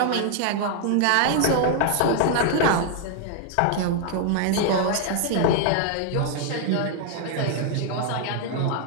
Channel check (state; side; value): different; both; correlation 0.00